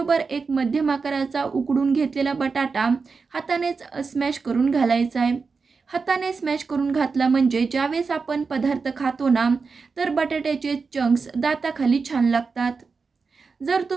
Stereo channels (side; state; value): left; quieter; 4.8 dB